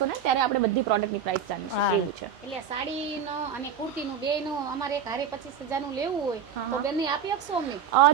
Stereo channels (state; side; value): quieter; left; 7.3 dB